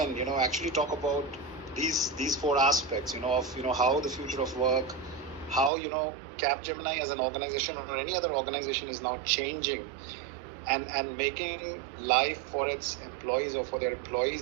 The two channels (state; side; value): drops out; left; at 5.7 s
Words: actually talk about these four aspects, of, how the future of work, how, Capgemini as an organization or any other organization is now changing and making life for its employees or for their